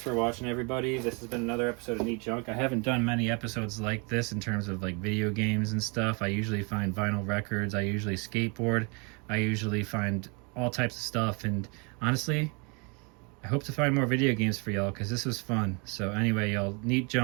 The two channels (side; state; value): left; quieter; 32.8 dB